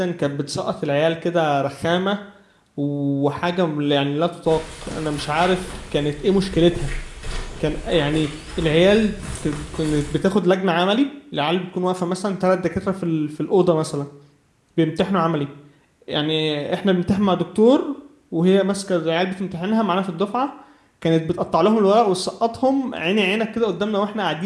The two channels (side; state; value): both; identical; correlation 1.00